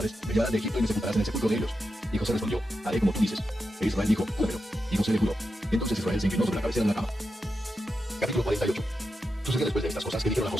me llevarás de Egipto y me sepultarás en el sepulcro de ellos. Y José respondió: haré como tú dices. E Israel dijo: júramelo. Y José le juró. Entonces Israel se inclinó sobre la cabecera de la cama. Capítulo 48. Sucedió después de estas cosas que dijeron a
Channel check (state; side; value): normal; both; correlation 0.88